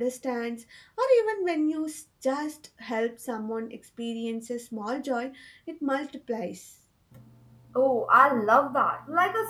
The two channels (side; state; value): both; identical; correlation 1.00